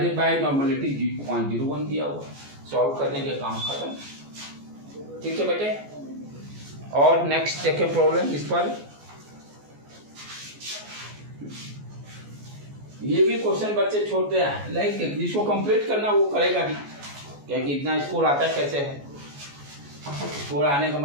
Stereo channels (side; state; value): left; late; 14 ms